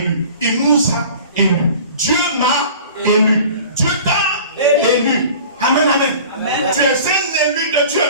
Il nous a élus. Dieu m'a élu. Dieu t'a élu. Amen, amen. Amen. Tu es un élu de Dieu.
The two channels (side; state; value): both; inverted; correlation -0.43